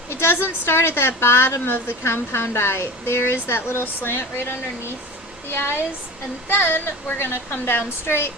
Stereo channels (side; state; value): both; normal; correlation 0.33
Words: doesn't start at that bottom of the compound eye. There is that little slant right underneath the eyes, and then we're going to come down straight.